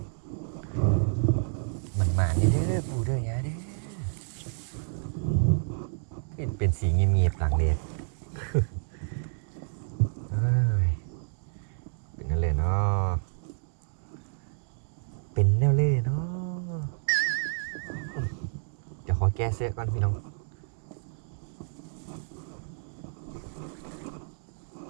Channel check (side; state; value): left; silent; digital silence